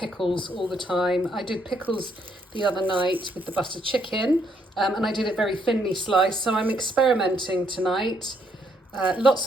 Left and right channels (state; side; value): normal; both; correlation 0.72